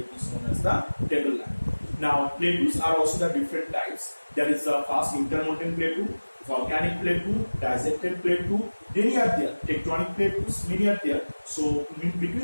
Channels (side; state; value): both; inverted; correlation -1.00